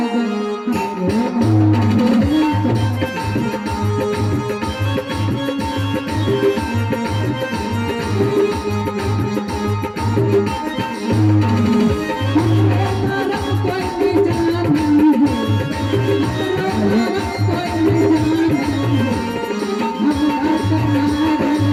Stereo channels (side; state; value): both; identical; correlation 1.00